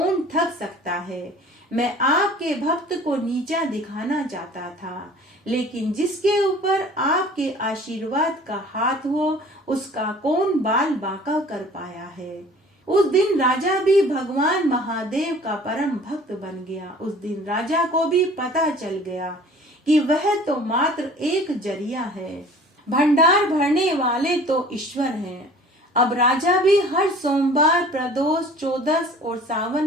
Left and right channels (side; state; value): both; normal; correlation 0.48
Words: ठग सकता है। मैं आपके भक्त को नीचा दिखाना चाहता था, लेकिन जिसके ऊपर आपके आशीर्वाद का हाथ हो उसका कौन बाल बांका कर पाया है। उस दिन राजा भी भगवान महादेव का परम भक्त बन गया। उस दिन राजा को भी पता चल गया कि वह तो मात्र एक जरिया है, भंडार भरने वाले तो ईश्वर हैं। अब राजा भी हर सोमवार, प्रदोष, चौदस और